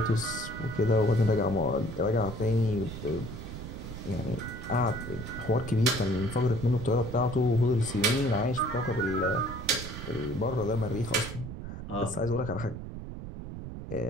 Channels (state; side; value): noise; right; rumble, 9 dB below the sound